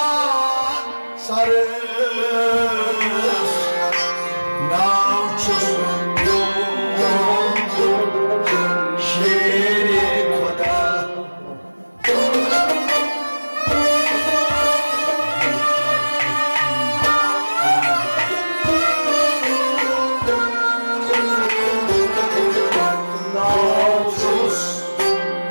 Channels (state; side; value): inverted; both; correlation -1.00